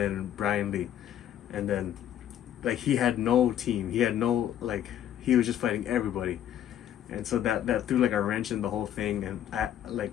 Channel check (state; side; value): quieter; right; 10.8 dB